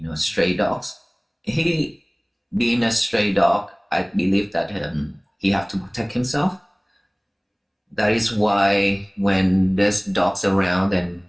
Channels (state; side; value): identical; both; correlation 1.00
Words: stray dogs. He, being a stray dog, I believe that he have to protect himself. That is why when there's dogs around, and